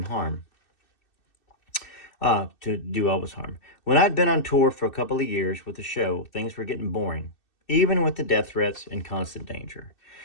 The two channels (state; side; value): late; right; 2.6 ms